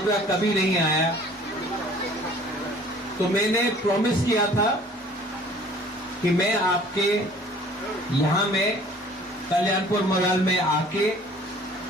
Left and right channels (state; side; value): normal; both; correlation 0.52